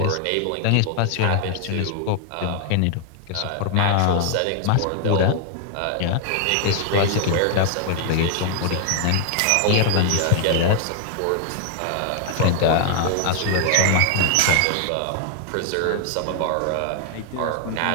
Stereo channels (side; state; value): both; different; correlation 0.00